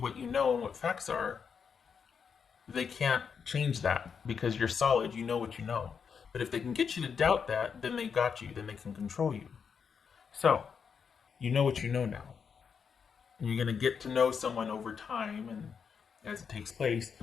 you know and what facts are, they can't change that because you're solid, you know what you know. But if they can get you to doubt that, then they got you, then they can control you. So, you know what you know now. And you're going to get to know someone over time and as it takes place,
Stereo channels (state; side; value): quieter; right; 6.5 dB